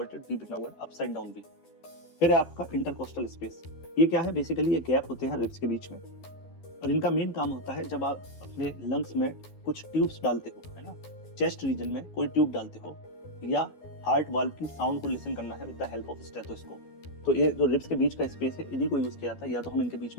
वी बना हुआ है, अपसाइड डाउन वी। फिर आपका इंटरकोस्टल स्पेस, ये क्या है? बेसिकली ये गैप होते हैं रिब्स के बीच में, और इनका मेन काम होता है जब आप अपने लंग्स में कुछ ट्यूब्स डालते हो, है ना, चेस्ट रीजन में कोई ट्यूब डालते हो, या हार्ट वाल्व की साउंड को लिसन करना है with the help of stethoscope, तो ये जो रिब्स के बीच का स्पेस है इन्हीं को यूज किया जाता है। या तो हम इनके बीच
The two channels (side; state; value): right; late; 12 ms